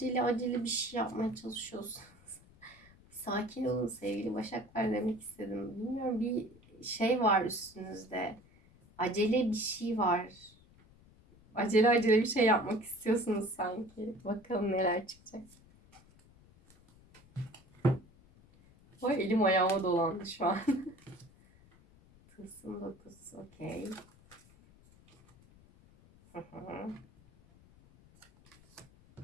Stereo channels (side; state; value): left; noise; rumble, 26 dB below the sound